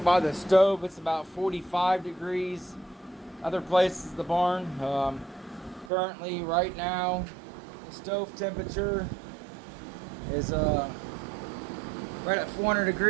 the stove. It's about 45 degrees. Other places the barn. Currently, right now, the stove temperature is right at 400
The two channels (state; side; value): drops out; left; at 5.9 s